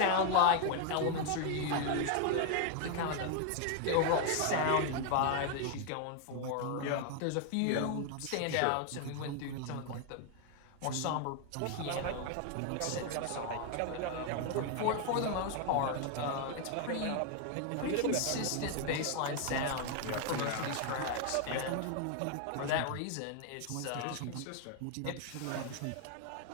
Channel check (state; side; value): different; both; correlation 0.00